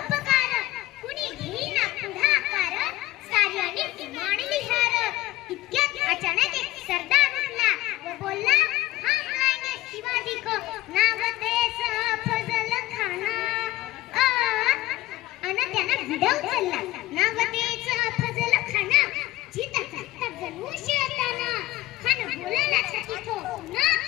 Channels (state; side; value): quieter; right; 16.9 dB